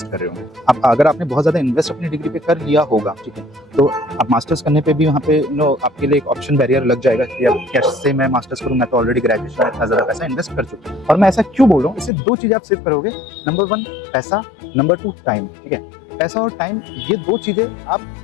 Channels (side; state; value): right; drops out; at 12.1 s